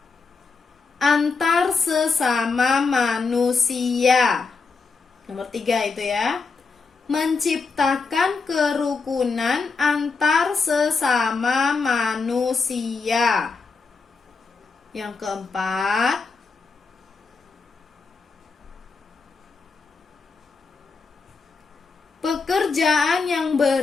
antar sesama manusia. Nomor 3 itu ya. Menciptakan kerukunan antar sesama manusia. Yang keempat, pekerjaan yang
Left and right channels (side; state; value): right; quieter; 4.5 dB